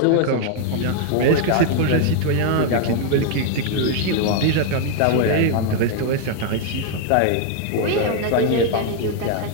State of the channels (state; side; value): different; both; correlation 0.00